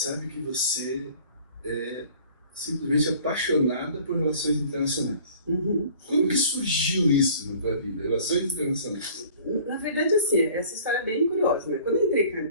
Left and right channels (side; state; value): both; inverted; correlation -0.50